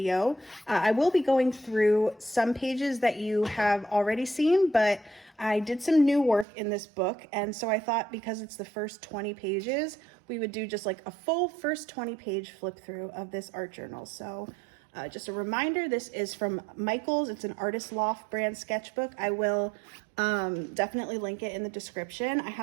I will be going through some pages that you have already seen, but I did some new work in this book, and so I thought because it's the first 20 pages, we would do just like a full first 20 page flip through of this art journal. So just a reminder, this is from Michaels. It's an Artist Loft brand sketchbook. I will definitely link it in the description. I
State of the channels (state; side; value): drops out; left; at 6.5 s